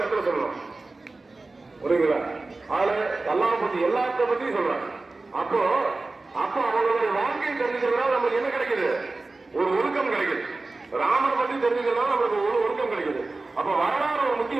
இடத்துல சொல்லலாம். புரியுங்களா? அதுல அல்லாஹ் பத்தி எல்லாத்த பத்தியும் சொல்றாங்க. அப்போ அவங்களுடைய வாழ்க்கையை தெரிஞ்சுக்கிறதுனால நமக்கு என்ன கிடைக்குது, ஒரு ஒழுக்கம் கிடைக்குது. ராமர் பத்தி தெரிஞ்சுக்கிறதுனால நமக்கு ஒரு ஒழுக்கம் கிடைக்குது. அப்ப வரலாறு ஒரு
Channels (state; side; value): quieter; left; 3.4 dB